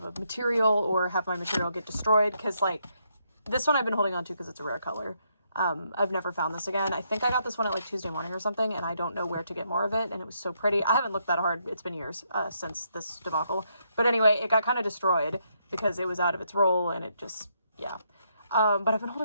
a material or have my material get destroyed. Cause like this one I've been holding on to because it's a rare color. I've never found this again. I think I got this one at like Tuesday morning or something, and I don't know where to get more of it, and it was so pretty. I haven't looked that hard. It's been years since this debacle. But anyway, it got kind of destroyed because it was out of its roll, and it just, yeah. But I've been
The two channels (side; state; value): both; inverted; correlation -0.76